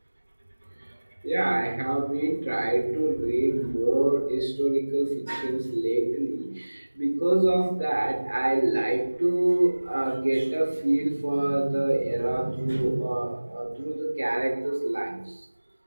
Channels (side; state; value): both; inverted; correlation -1.00